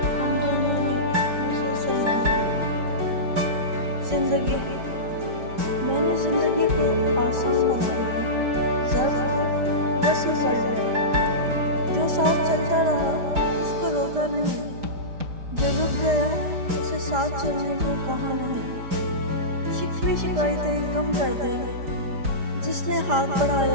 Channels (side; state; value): left; late; 5.0 ms